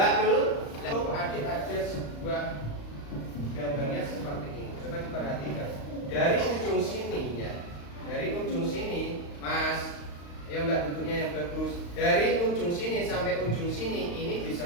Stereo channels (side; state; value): right; late; 35 ms